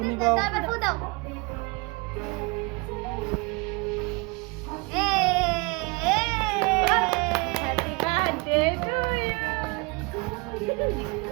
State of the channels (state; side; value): quieter; left; 27.4 dB